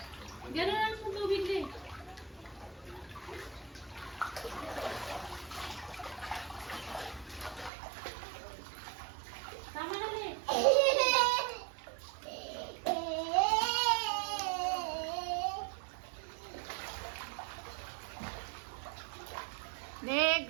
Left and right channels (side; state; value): left; drops out; at 7.7 s